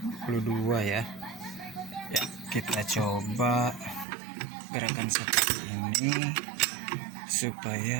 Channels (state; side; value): drops out; left; at 4.0 s